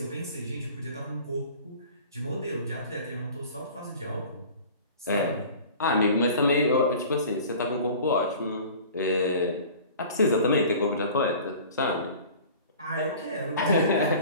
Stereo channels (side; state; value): both; inverted; correlation -0.43